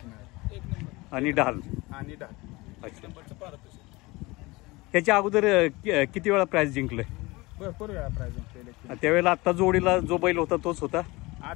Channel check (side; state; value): right; quieter; 22.7 dB